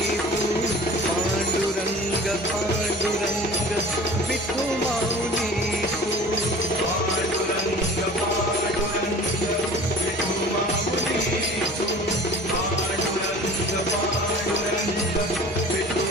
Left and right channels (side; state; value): both; normal; correlation 0.43